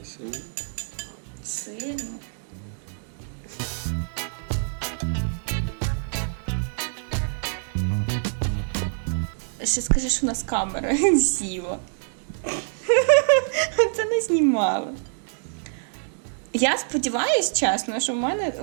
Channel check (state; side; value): silent; left; digital silence